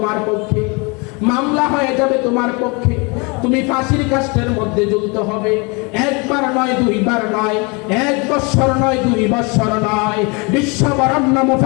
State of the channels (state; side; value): quieter; right; 29.8 dB